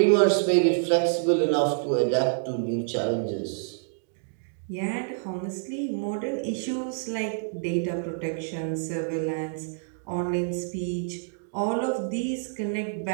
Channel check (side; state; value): left; silent; digital silence